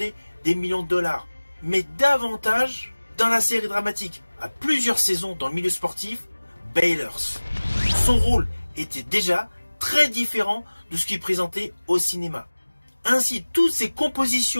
des millions de dollars, mais davantage dans la série dramatique, à plusieurs saisons dans le milieu sportif, Baylors. Son rôle était déjà très différent de ce qu'il présentait au cinéma. Ainsi, toutes ces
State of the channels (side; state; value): both; inverted; correlation -1.00